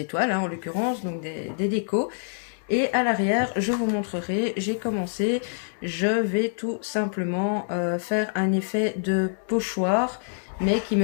hein, en l'occurrence, donc des décos. Et à l'arrière, je vous montrerai, j'ai commencé, je vais tout simplement faire un effet de pochoir, mais qui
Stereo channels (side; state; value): right; silent; digital silence